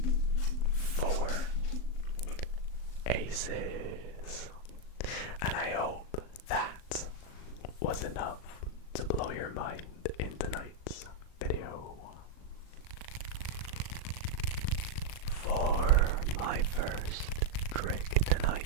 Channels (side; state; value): right; late; 38 ms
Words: 4 aces. And I hope that was enough to blow your mind in tonight's video. For my first trick